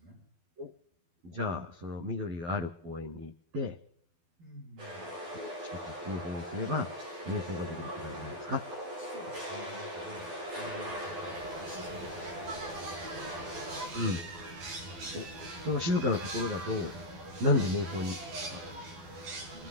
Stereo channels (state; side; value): late; left; 12 ms